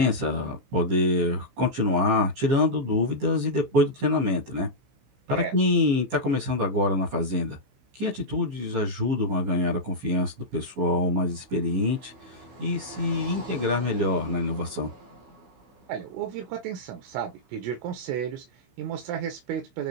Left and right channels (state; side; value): late; left; 16 ms